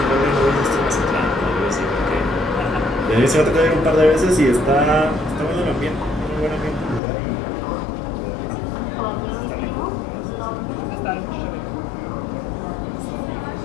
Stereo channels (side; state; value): right; drops out; at 7.0 s